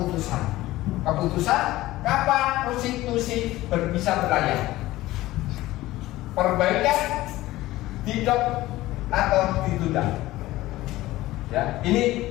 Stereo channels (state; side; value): quieter; right; 17.0 dB